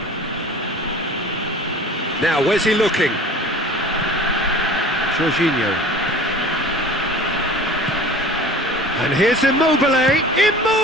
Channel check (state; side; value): normal; both; correlation 0.42